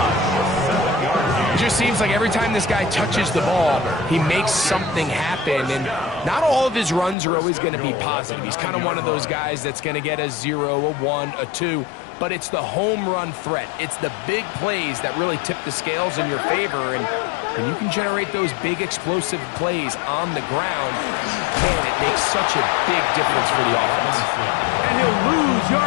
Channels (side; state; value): right; drops out; at 7.2 s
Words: It just seems like every time this guy touches the ball, he makes something happen. And not all of his runs are always going to be positive. He's kind of one of those guys that's going to get a 0, a 1, a 2. But it's the home run threat. It's the big plays that really tip the scales in your favor. And when you can generate those big explosive plays on the ground, man, it makes such a big difference for the offense. And he'll lose